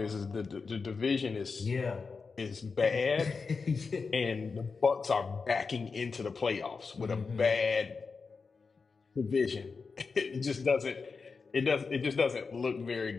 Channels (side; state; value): right; quieter; 4.8 dB